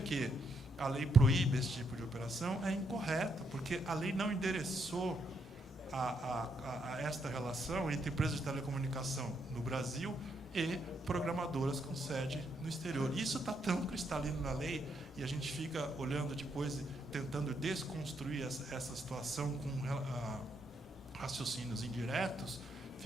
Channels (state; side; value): normal; both; correlation 0.77